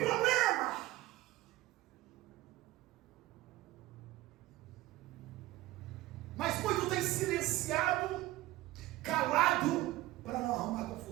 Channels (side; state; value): left; quieter; 17.0 dB